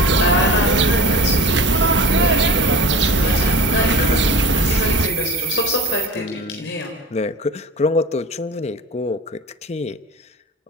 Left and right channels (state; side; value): normal; both; correlation 0.38